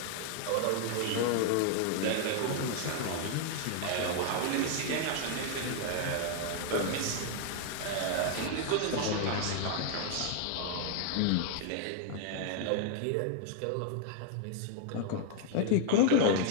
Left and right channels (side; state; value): both; different; correlation 0.00